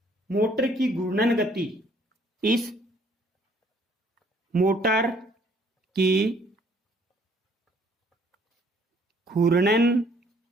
मोटर की घूर्णन गति, इस मोटर की घूर्णन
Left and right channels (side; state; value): both; normal; correlation 0.62